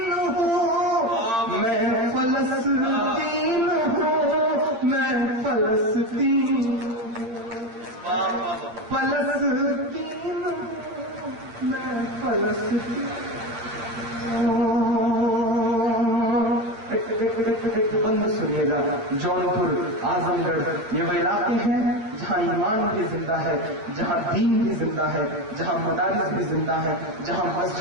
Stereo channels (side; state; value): left; late; 8.8 ms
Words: ہوں، میں فلسطین فلسطین فلسطین میں فلسطین بند سنیے گا. جونپور اعظم گڑھ یہ وہ علاقے ہیں جہاں ایمان بھی زندہ ہے, جہاں دین بھی زندہ ہے, جہاں مدارس بھی زندہ ہے, جہاں